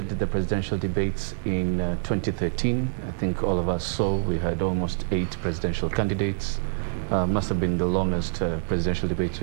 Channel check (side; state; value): left; silent; 61 dB below the other